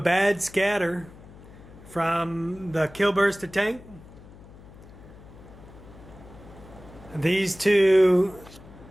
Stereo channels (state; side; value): noise; left; hum, 20 dB below the sound